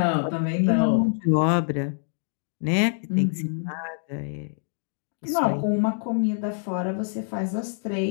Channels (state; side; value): silent; right; digital silence